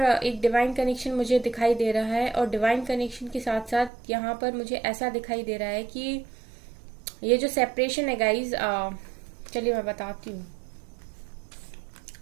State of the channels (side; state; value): left; drops out; at 3.9 s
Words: एक डिवाइन कनेक्शन मुझे दिखाई दे रहा है और डिवाइन कनेक्शन के साथ साथ यहाँ पर मुझे ऐसा दिखाई दे रहा है कि ये जो सेपरेशन है गाइज, चलिए मैं बताती हूँ